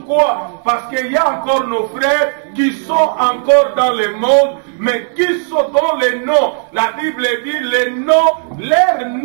Parce qu'il y a encore nos frères qui sont encore dans le monde, mais qui sont dans les noms. La Bible dit, les noms, leurs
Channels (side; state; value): left; silent; digital silence